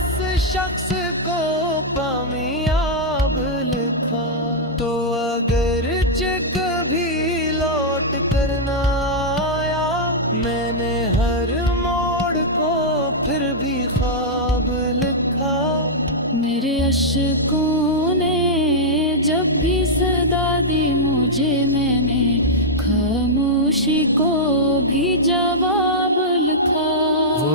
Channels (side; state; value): both; normal; correlation -0.07